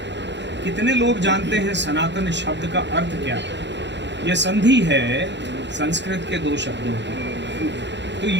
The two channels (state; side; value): late; left; 0.52 ms